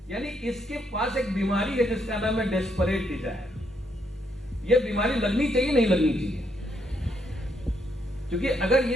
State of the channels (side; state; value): both; normal; correlation 0.75